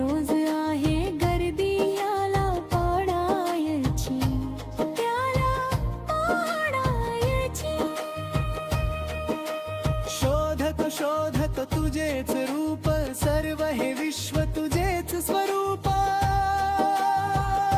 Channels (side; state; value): both; identical; correlation 1.00